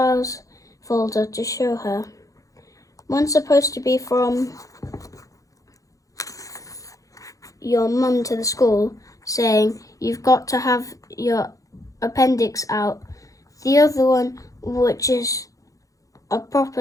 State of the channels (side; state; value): right; late; 0.16 ms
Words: folder to show her. One's supposed to be from your mum to the school, saying you've got to have your appendix out. The other one, which is a